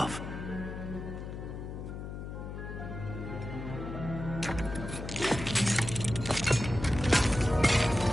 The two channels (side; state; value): left; noise; hum, 7 dB below the sound